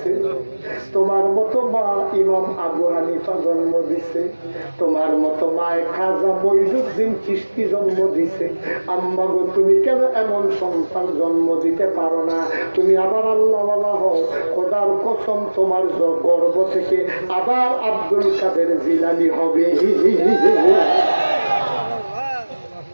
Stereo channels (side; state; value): both; inverted; correlation -1.00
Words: তোমার মতো মা ইমাম আবু হানিফা জন্ম দিছে, তোমার মতো মায়ে খাজা মঈনুদ্দিন চিশতি জন্ম দিছে। আম্মা গো তুমি কেন এমন সন্তান জন্ম দিতে পারো না? তুমি আবার আল্লাহওয়ালা হও, খোদার কসম তোমার গর্ভ থেকে আবার আব্দুল কাদের জিলানী হবে।